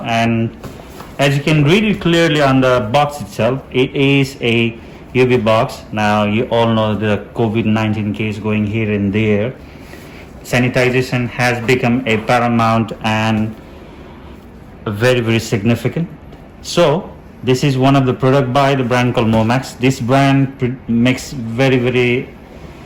as you can read it clearly on the box itself, it is a UV box. Now you all know the COVID-19 case going here and there. Sanitization has become a paramount and very significant. So this is one of the product by the brand called Momax. This brand makes very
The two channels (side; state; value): both; identical; correlation 1.00